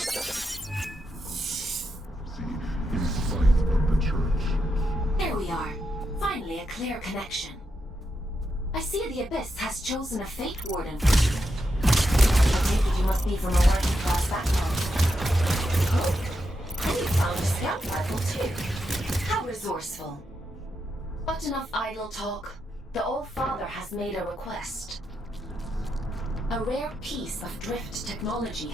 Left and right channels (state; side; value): normal; both; correlation 0.85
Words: In spite of the church. There we are. Finally a clear connection. I see the Abyss has chosen a Fate Warden for you. I take it you must be from a working class background. Oh, and you found a scout rifle too. How resourceful. But enough idle talk. The All-Father has made a request. A rare piece of drift technology